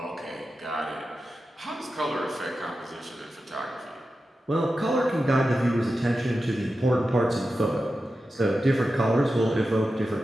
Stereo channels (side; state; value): both; normal; correlation 0.92